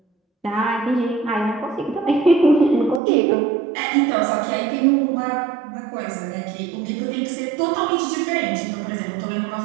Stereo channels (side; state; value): left; drops out; at 3.0 s